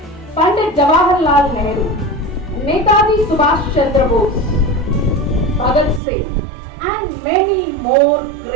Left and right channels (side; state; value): left; drops out; at 6.0 s